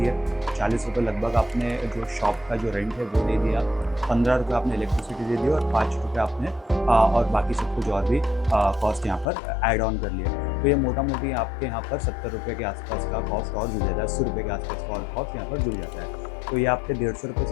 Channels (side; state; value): right; drops out; at 9.2 s